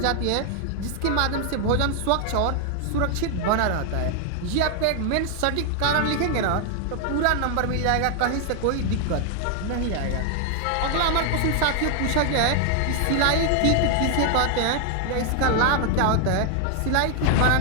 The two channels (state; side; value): different; both; correlation 0.00